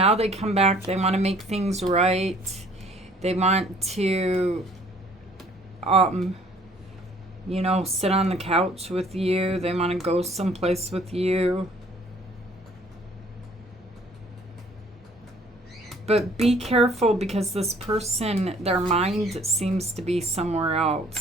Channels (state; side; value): normal; both; correlation 0.57